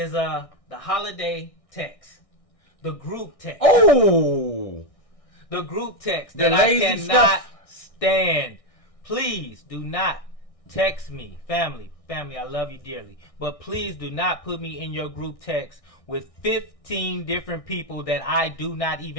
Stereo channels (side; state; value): right; late; 1.6 ms